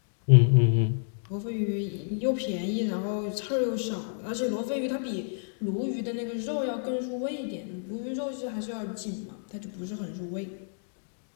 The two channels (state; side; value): silent; right; digital silence